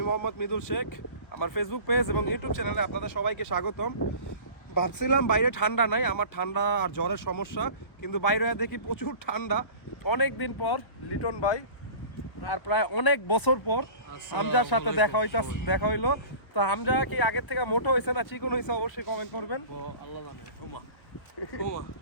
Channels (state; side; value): late; right; 1.3 ms